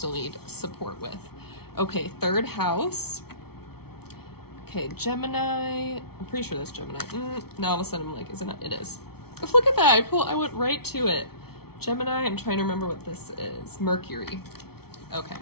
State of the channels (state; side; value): late; right; 0.95 ms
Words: need support with. Okay, third house. Okay, Gemini. I'm pretty sure that's Gemini. Now all of a sudden I'm like, isn't it? It is. Look at that. I went right to it. Gemini. I'm trying to remember what this is. Mercury. Okay.